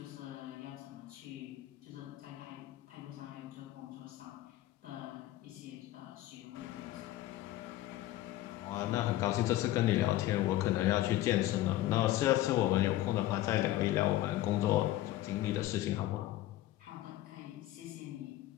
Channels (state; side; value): quieter; right; 15.2 dB